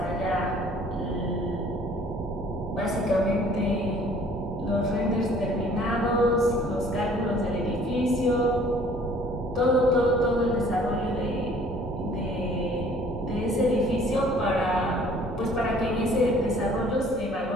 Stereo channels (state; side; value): normal; both; correlation 0.55